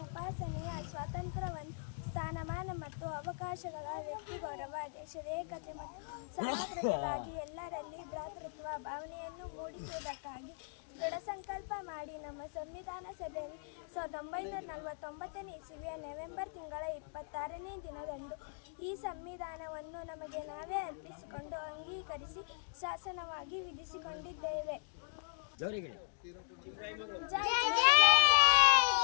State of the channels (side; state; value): right; silent; digital silence